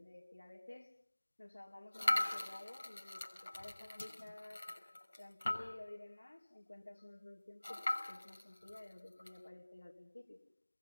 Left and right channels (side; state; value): both; inverted; correlation -1.00